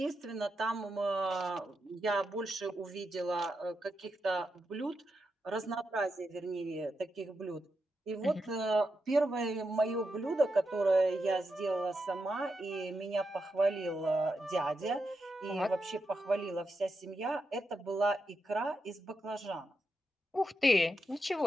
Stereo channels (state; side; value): normal; both; correlation 0.86